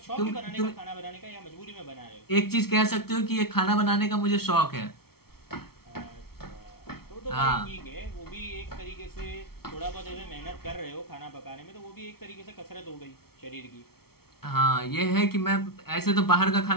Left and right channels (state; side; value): late; right; 0.95 ms